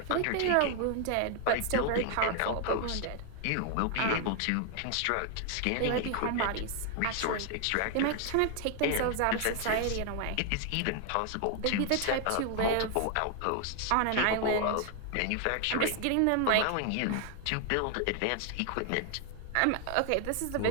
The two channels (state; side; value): different; both; correlation 0.00